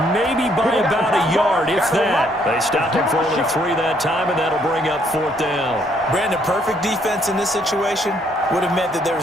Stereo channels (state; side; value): normal; both; correlation 0.68